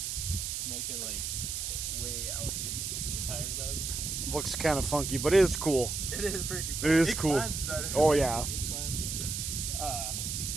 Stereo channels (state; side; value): noise; right; hiss, 3 dB below the sound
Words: make it like way out here. The tire does. Looks kind of funky, but it is cool. It is freaking cool. It is cool. Climbs better. Oh yeah. It climbs.